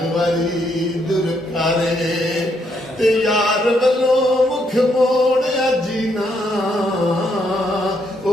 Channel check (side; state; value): both; normal; correlation 0.75